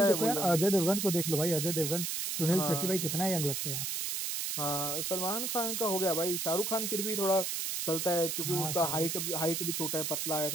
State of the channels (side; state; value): right; noise; hiss, 2 dB below the sound